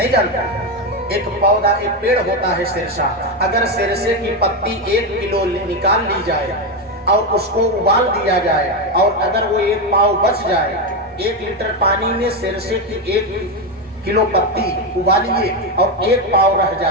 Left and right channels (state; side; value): normal; both; correlation 0.10